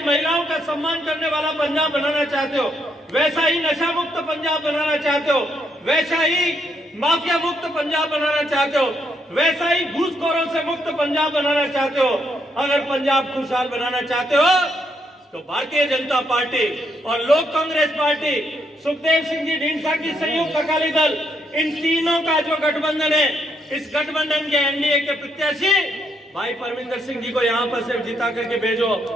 महिलाओं का सम्मान करने वाला पंजाब बनाना चाहते हो, वैसा ही नशा मुक्त पंजाब बनाना चाहते हो, वैसा ही माफिया मुक्त पंजाब बनाना चाहते हो, वैसा ही घूसखोरों से मुक्त पंजाब बनाना चाहते हो। अगर पंजाब खुशहाल बनाना चाहते हो तो भारतीय जनता पार्टी और लोक कांग्रेस पार्टी, सुखदेव सिंह जी ढींढसा की संयुक्त अकाली दल, इन तीनों का जो गठबंधन है, इस गठबंधन के एनडीए के प्रत्याशी भाई परमिंदर सिंह जी को यहाँ पर सिर्फ जिता करके भेजो।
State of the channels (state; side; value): normal; both; correlation 0.75